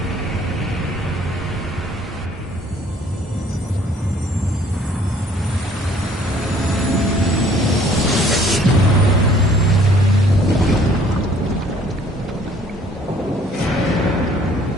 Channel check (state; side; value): normal; both; correlation 0.58